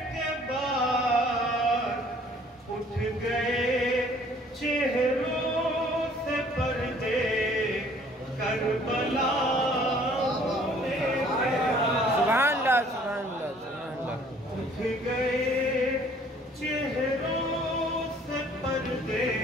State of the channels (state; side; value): normal; both; correlation 0.57